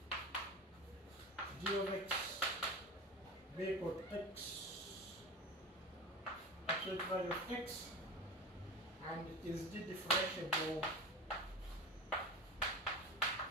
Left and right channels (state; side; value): normal; both; correlation 0.28